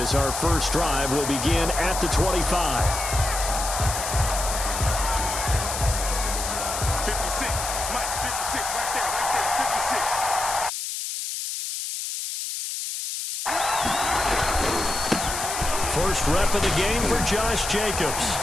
our first drive will begin at the 25. 56, Mike, 56, right there, 56. First rep of the game for Josh Jacobs.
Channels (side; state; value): left; noise; hiss, 4 dB below the sound